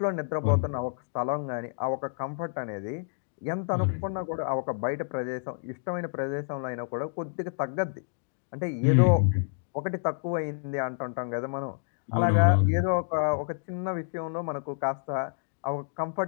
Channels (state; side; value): silent; right; digital silence